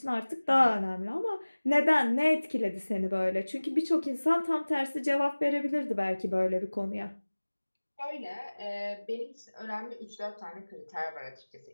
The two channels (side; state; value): both; inverted; correlation -1.00